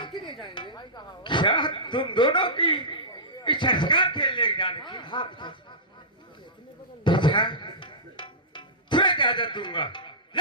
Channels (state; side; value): normal; both; correlation -0.19